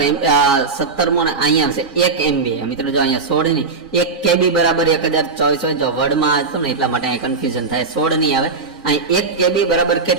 મો અહીંયા આવશે 1 MB. મિત્રો જો અહીંયા 16 ની 1 KB બરાબર 1024 હોય, જો વર્ડમાં હતું ને એટલા માટે અહીંયા કન્ફ્યુઝન થાય, 16 નહીં આવે. અહીં 1 KB બરાબર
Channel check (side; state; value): left; quieter; 4.4 dB